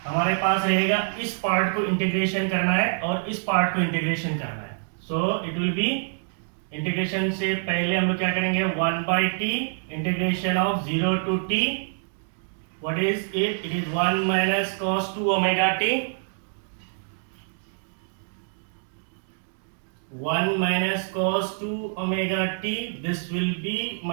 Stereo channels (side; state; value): left; silent; 61 dB below the other